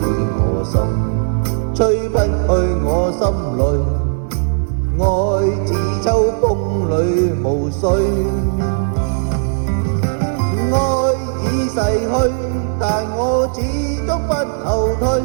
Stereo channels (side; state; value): left; silent; 68 dB below the other